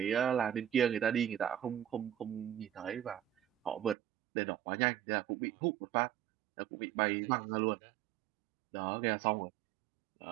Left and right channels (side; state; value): left; drops out; at 4.0 s